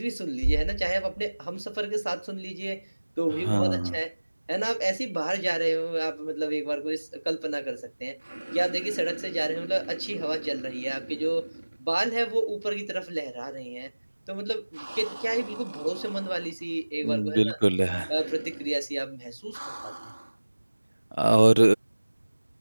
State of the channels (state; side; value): inverted; both; correlation -1.00